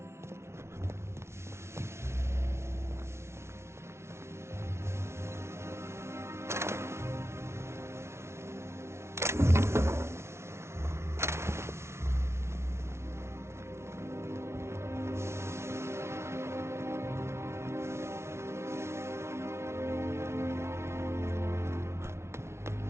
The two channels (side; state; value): left; late; 0.13 ms